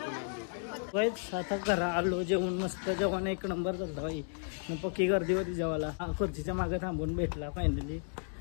वाईच आता घरा आलो, जेवण मस्त, जेवण एक नंबर झालं बाई. मग पक्की गर्दी होती जेवायला. खुर्चीच्या मागे थांबून भेटला फायनली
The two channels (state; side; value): silent; right; digital silence